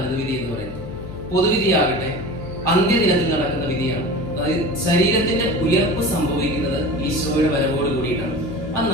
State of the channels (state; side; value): noise; left; hum, 12 dB below the sound